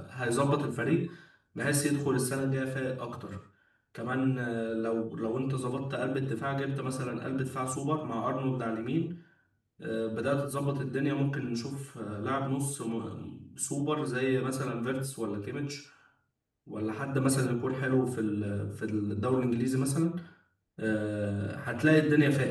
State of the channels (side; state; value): both; identical; correlation 1.00